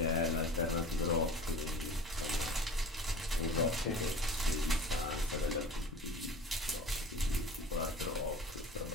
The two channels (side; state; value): both; normal; correlation 0.40